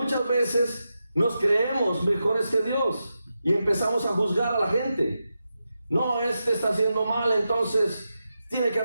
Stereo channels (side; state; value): both; inverted; correlation -0.89